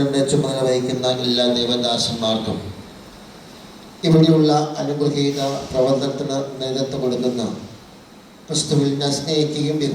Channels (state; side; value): identical; both; correlation 1.00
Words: ചുമതല വഹിക്കുന്ന എല്ലാ ദൈവദാസന്മാർക്കും, ഇവിടെയുള്ള അനുഗ്രഹീത പ്രവർത്തനത്തിന് നേതൃത്വം കൊടുക്കുന്ന, ക്രിസ്തുവിൽ സ്നേഹിക്കുകയും